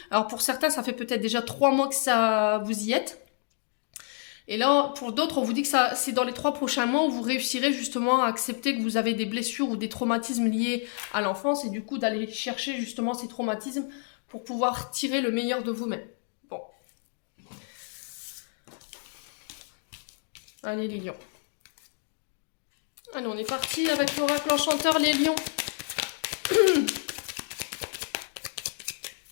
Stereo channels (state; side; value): silent; right; 55 dB below the other